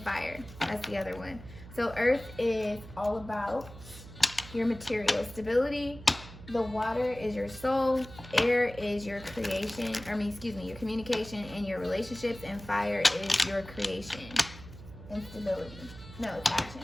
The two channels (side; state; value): right; noise; hum, 16 dB below the sound